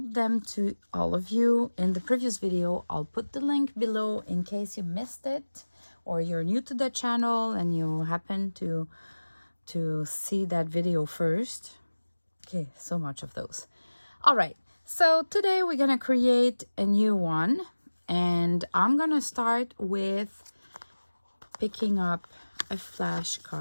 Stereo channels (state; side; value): inverted; both; correlation -1.00